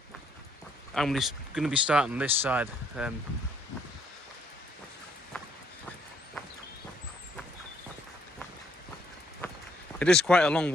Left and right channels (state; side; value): normal; both; correlation 0.68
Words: I'm just going to be starting this side. It is quite a long